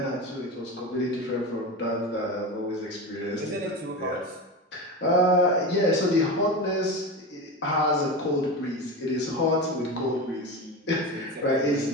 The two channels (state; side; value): normal; both; correlation 0.24